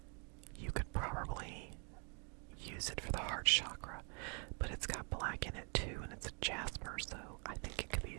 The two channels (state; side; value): quieter; left; 36.6 dB